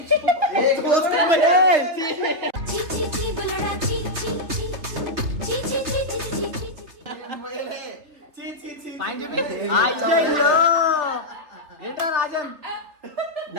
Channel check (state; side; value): late; left; 3.3 ms